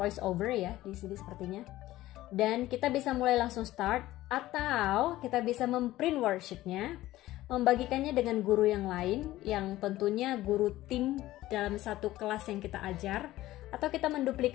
over ya di sini sepertinya. Dan kita bisa mulai langsung start, atau kita bisa memprint worksheetnya, membagikannya dengan guru yang lain, yang tentunya guru tim dalam satu kelas yang kita ajar, atau kita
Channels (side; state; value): right; quieter; 15.9 dB